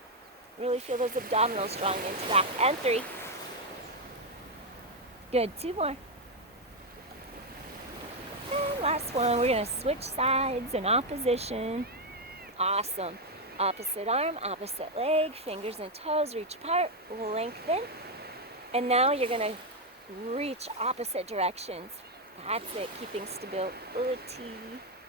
really feel those abdominals drawing into back. And 3, good, 2 more. And last one, we're gonna switch sides in opposition. Awesome. Opposite arm, opposite leg, fingers and toes, reach apart, lengthen. And now you're gonna reach opposite directions. That's it, keeping stability.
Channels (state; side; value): normal; both; correlation 0.04